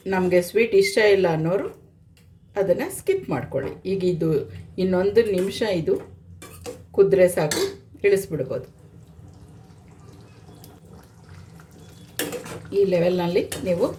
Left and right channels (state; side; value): identical; both; correlation 1.00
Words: ನಮಗೆ ಸ್ವೀಟ್ ಇಷ್ಟ ಇಲ್ಲ ಅನ್ನೋರು ಅದನ್ನು ಸ್ಕಿಪ್ ಮಾಡ್ಕೊಳ್ಳಿ. ಈಗ ಇದು ಇನ್ನೊಂದು ನಿಮಿಷ ಇದು ಕುದ್ರೆ ಸಾಕು, ಇಳಿಸ್ಬಿಡ್ಬೋದು. ಈ ಲೆವೆಲ್ನಲ್ಲಿ ನೀವು